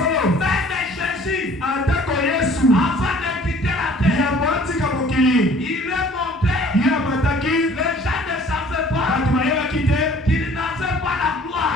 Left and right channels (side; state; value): both; normal; correlation 0.53